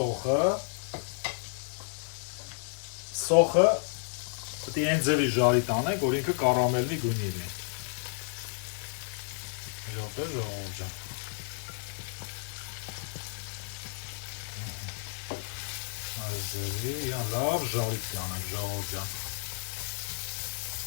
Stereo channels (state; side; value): silent; right; digital silence